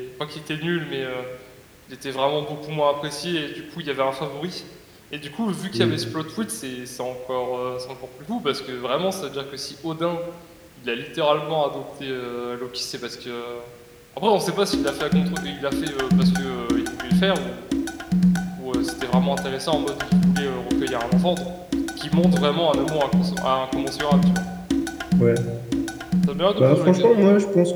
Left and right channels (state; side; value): identical; both; correlation 1.00